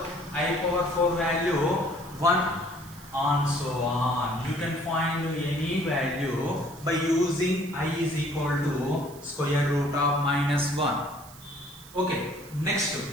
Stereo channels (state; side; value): noise; right; hiss, 20 dB below the sound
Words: 4 value 1 and so on. You can find any value by using I is equal to square root of minus 1. Okay, next,